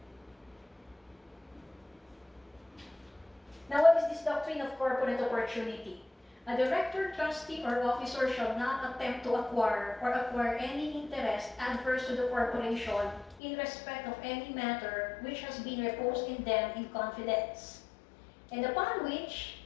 Now, what is this doctrine of corporate opportunity? A director, trustee, or officer shall not attempt to acquire any interest adverse to the corporation in respect of any matter which has been reposed in them in confidence, and upon which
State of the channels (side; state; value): right; drops out; at 13.4 s